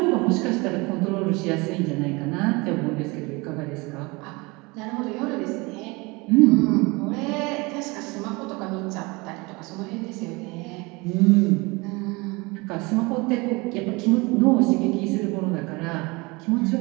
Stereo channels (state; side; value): quieter; left; 25.4 dB